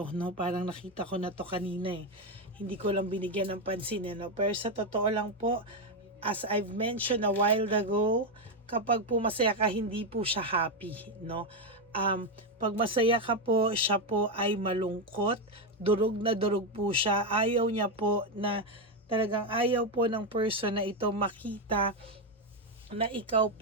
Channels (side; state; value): both; normal; correlation 0.07